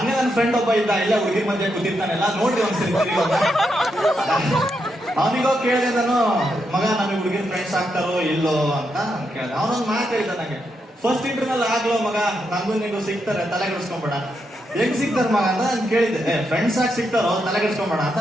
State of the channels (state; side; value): normal; both; correlation 0.82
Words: ನನ್ನ ಫ್ರೆಂಡ್ ಒಬ್ಬ ಇದ್ದ, ಇಲ್ಲ ಹುಡುಗಿ ಮಧ್ಯೆ ಕೂತಿರ್ತಾನೆಲ್ಲ, ನೋಡ್ರಿ ಒಂದ್ಸರಿ ಅವನಿಗೋ ಕೇಳಿದೆ ನಾನು, ಮಗ ನಮಗೆ ಹುಡುಗಿನ ಫ್ರೆಂಡ್ಸ್ ಆಗ್ತಾರೋ ಇಲ್ಲೋ ಅಂತ ಕೇಳಿದೆ. ಅವನೊಂದು ಮಾತು ಹೇಳಿದ ನನಗೆ, ಫಸ್ಟ್ ಇಂಟರ್ನಲ್ ಆಗ್ಲೋ ಮಗ, ನಂಗೂ ನಿಂಗೂ ಸಿಗ್ತಾರೆ, ತಲೆ ಕೆಡಿಸ್ಕೊಂಬೇಡ. ಹೆಂಗ್ ಸಿಗ್ತಾರ ಮಗ ಅಂತ ನಾನು ಕೇಳಿದ್ದೆ. ಫ್ರೆಂಡ್ಸ್ ಆಗಿ ಸಿಗ್ತಾರೋ, ತಲೆ ಕೆಡಿಸ್ಕೊಂಬೇಡ